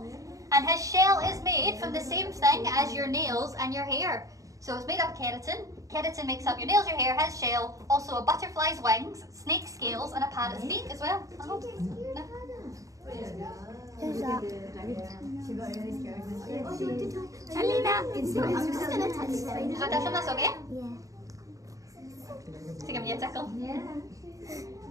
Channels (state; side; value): late; left; 0.16 ms